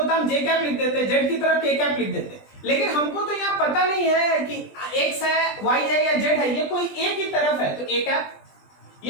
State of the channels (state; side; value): late; right; 20 ms